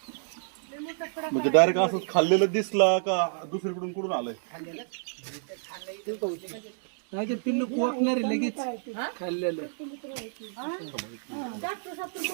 म्हणजे डायरेक्ट असंच खाल्लेलं दिसला का दुसरीकडून कुठून आलंय? नाही ते पिल्लू कोकणार लगेच खाल्लेलं.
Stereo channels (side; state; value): left; silent; 59 dB below the other